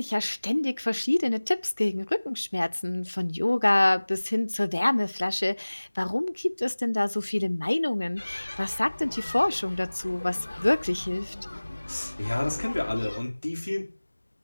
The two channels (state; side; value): inverted; both; correlation -1.00